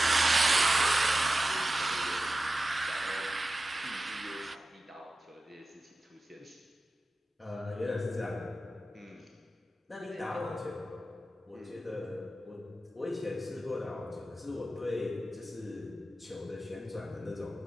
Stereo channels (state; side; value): normal; both; correlation 0.93